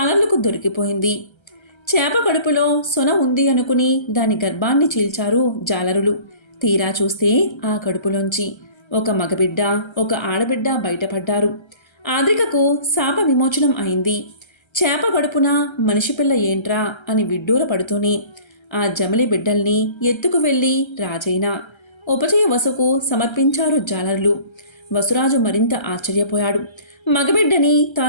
దొరికిపోయింది. చేప కడుపులో సొన ఉంది అనుకుని దాని గర్భాన్ని చీల్చారు జాలరులు. తీరా చూస్తే ఆ కడుపులోంచి ఒక మగబిడ్డ ఒక ఆడబిడ్డ బయటపడ్డారు. ఆద్రికకు శాప విమోచనం అయింది. చేప కడుపున మనిషి పిల్ల ఏంట్రా అని విడ్డూర పడుతూనే ఆ జమలి బిడ్డల్ని ఎత్తుకు వెళ్ళి రాజైన ఉపచయ వసుకు సమర్పించారు జాలరులు. వసురాజు మరింత ఆశ్చర్యపోయాడు. మగబిడ్డని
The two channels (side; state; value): right; late; 1.3 ms